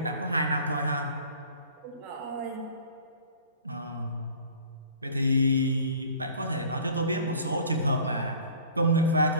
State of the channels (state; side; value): inverted; both; correlation -0.47